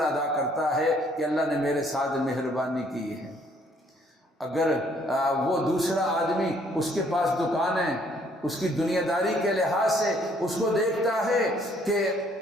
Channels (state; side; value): normal; both; correlation 0.64